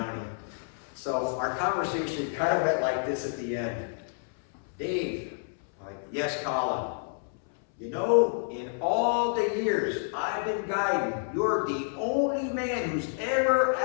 So our conversation kind of went like this at the end. Dave, like, yes, Colin. You know, in all the years I've been guiding, you're the only man who's ever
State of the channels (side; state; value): right; silent; 59 dB below the other